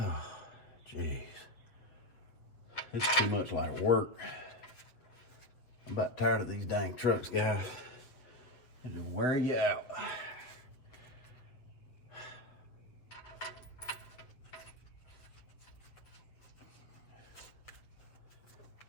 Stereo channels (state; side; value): late; right; 7.7 ms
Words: jeez. This is too much like work. I'm about tired of these dang trucks, guys. They just wear you out.